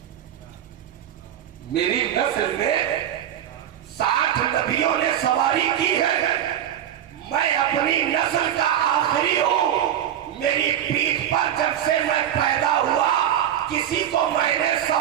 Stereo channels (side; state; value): left; quieter; 10.6 dB